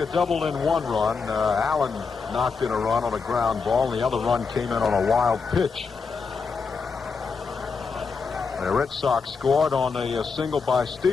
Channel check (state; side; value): quieter; right; 5.1 dB